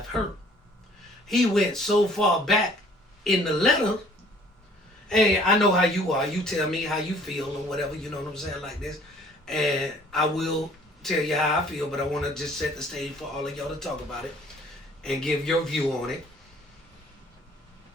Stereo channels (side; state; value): both; normal; correlation 0.56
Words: hurt. He went so far back in the letter. Hey, I know how you are. You tell me how you feel or whatever, you know what I'm saying, like this. And I will tell you how I feel, but I want to just set the stage for all of y'all to talk about it and give your view on it.